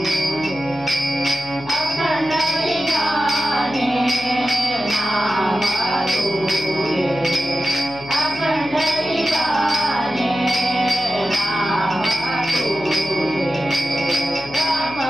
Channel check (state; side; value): noise; left; hum, 17 dB below the sound